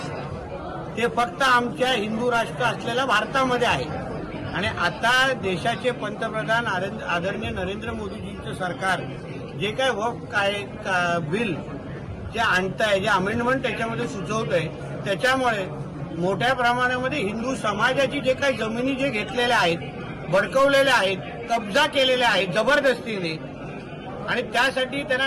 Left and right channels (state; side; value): identical; both; correlation 1.00